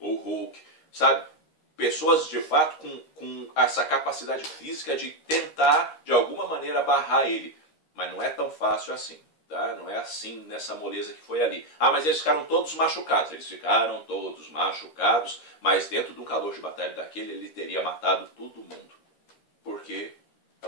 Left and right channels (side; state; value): right; late; 13 ms